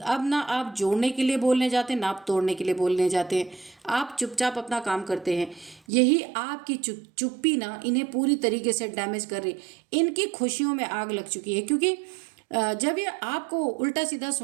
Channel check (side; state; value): left; drops out; at 5.8 s